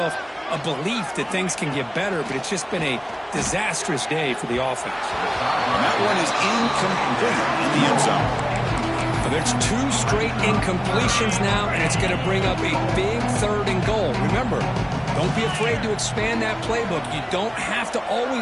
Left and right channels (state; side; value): identical; both; correlation 1.00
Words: a belief that things can get better, but it's just been a disastrous day for the offense. And that one is incomplete in the end zone. Well, there's 2 straight incompletions now, and it's going to bring up a big 3rd and goal. Remember, don't be afraid to expand that playbook. You don't have to